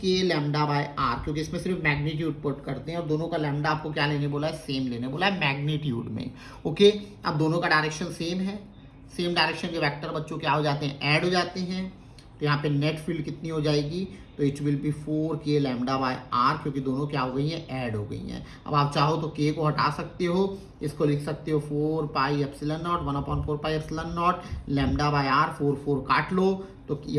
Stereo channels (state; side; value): identical; both; correlation 1.00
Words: λ/r, क्योंकि इसमें सिर्फ मैग्नीट्यूड पुट करते हैं और दोनों का लैम्डा आपको क्या लेने बोला है, सेम लेने बोला है मैग्नीट्यूड में। ओके, अब दोनों का डायरेक्शन सेम है, सेम डायरेक्शन के वेक्टर बच्चों क्या हो जाते हैं, ऐड हो जाते हैं। तो यहाँ पे नेट फील्ड कितनी हो जाएगी, तो it will B 4k λ/r, क्योंकि दोनों क्या हो गई हैं, ऐड हो गई हैं। अब आप चाहो तो k को हटा सकते हो, इसको लिख सकते हो 4πε0 1/4πε0 λ/r। 4 काट लो तो ये